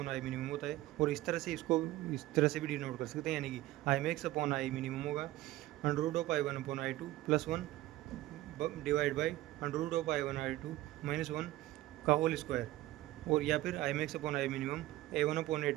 I minimum होता है, और इस तरह से इसको इस तरह से भी डिनोट कर सकते हैं, यानी कि I max upon I minimum होगा under root of I1 upon I2 plus 1 divide by under root of I1 I2 minus 1 का होल स्क्वायर, और या फिर I max upon I minimum A1 upon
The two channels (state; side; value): quieter; left; 16.6 dB